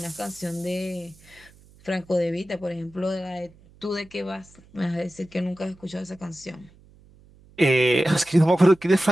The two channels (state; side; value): noise; right; hum, 26 dB below the sound